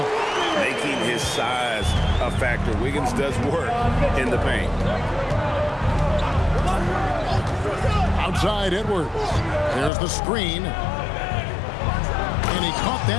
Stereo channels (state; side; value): drops out; right; at 9.9 s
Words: Making his size a factor. Wiggins does work in the paint. Outside Edwards. There's the screen. And he caught